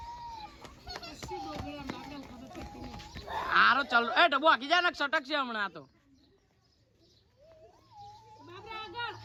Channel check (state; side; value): identical; both; correlation 1.00